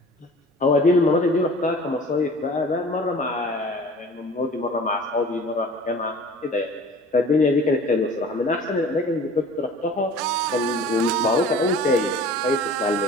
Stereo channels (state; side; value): normal; both; correlation 0.44